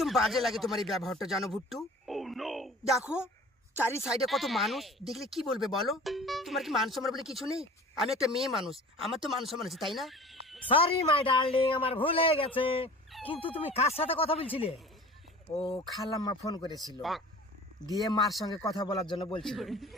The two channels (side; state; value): both; normal; correlation 0.43